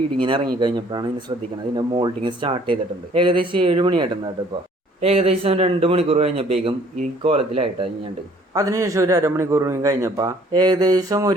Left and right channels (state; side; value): normal; both; correlation 0.58